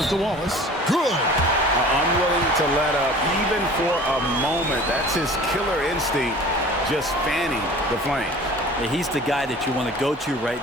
to Wallace. Good. Unwilling to let up even for a moment. That's his killer instinct, just fanning the flames. Yeah, he's the guy that you want to go to right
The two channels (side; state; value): both; normal; correlation 0.44